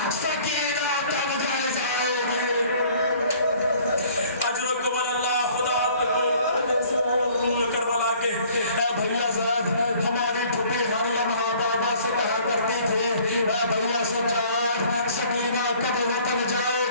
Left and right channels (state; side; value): inverted; both; correlation -0.54